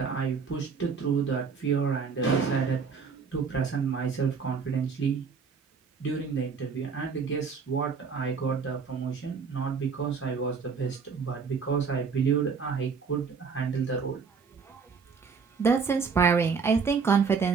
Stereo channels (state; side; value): quieter; left; 5.6 dB